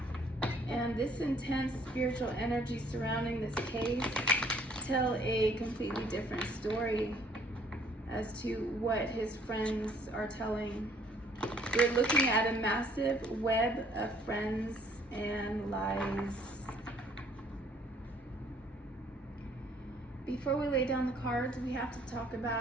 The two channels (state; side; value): normal; both; correlation 0.61